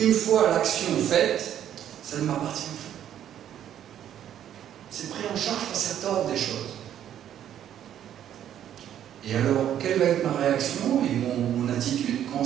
une fois l'action faite, ça ne m'appartient plus. C'est pris en charge par cet ordre des choses. Et alors, quelle va être ma réaction et mon attitude quand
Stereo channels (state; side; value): quieter; left; 10.5 dB